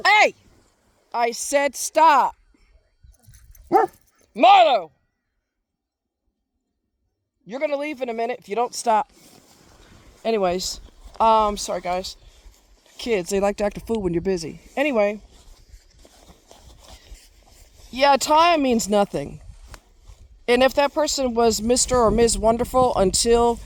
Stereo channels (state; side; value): identical; both; correlation 1.00